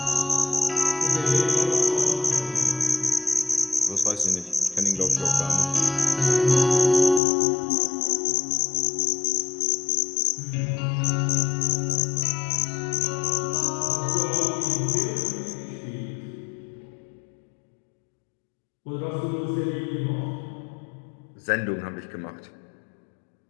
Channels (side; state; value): right; drops out; at 7.2 s